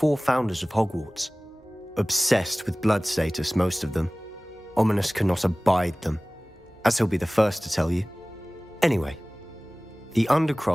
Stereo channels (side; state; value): both; normal; correlation 0.98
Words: founders of Hogwarts. Obsessed with blood status, most of them. Ominous cannot abide them, as he'll be the first to tell you. Anyway, the